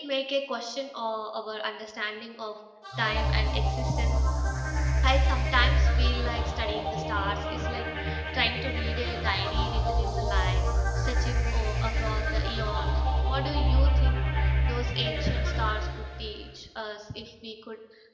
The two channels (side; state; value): both; identical; correlation 1.00